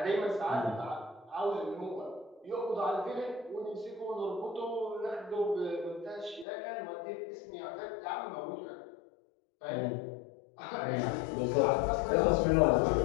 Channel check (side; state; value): right; drops out; at 6.5 s